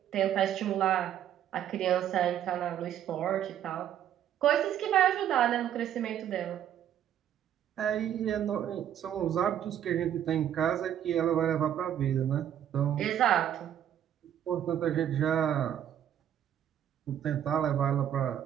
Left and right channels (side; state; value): left; quieter; 10.4 dB